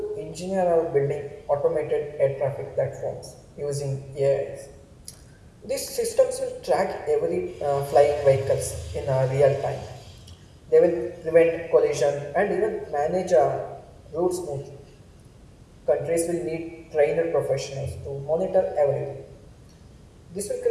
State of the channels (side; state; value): both; identical; correlation 1.00